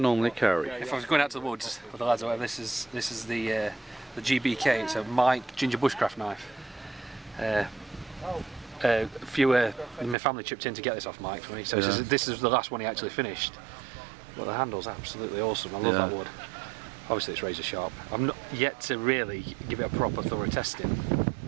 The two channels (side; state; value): left; drops out; at 10.2 s